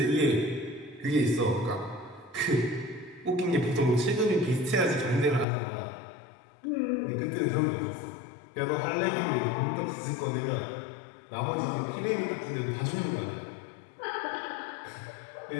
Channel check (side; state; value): right; drops out; at 5.5 s